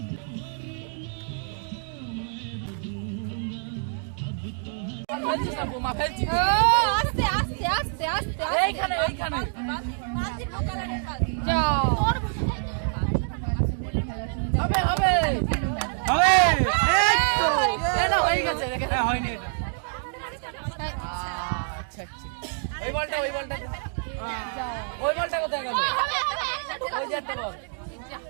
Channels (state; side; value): silent; left; 61 dB below the other